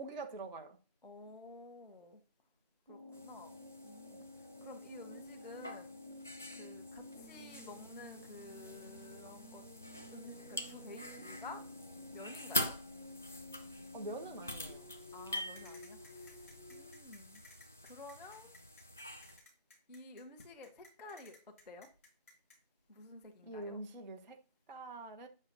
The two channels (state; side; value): inverted; both; correlation -0.37